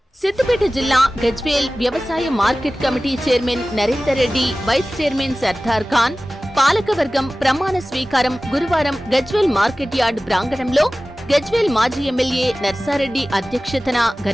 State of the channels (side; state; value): both; normal; correlation 0.97